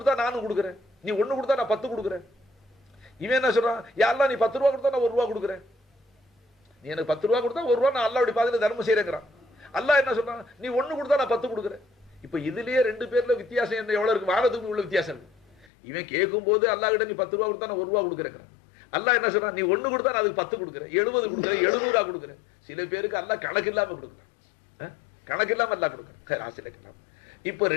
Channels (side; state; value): right; drops out; at 15.7 s